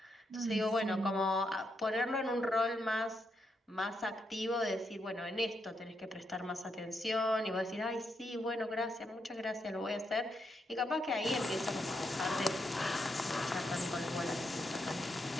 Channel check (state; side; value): normal; both; correlation 0.81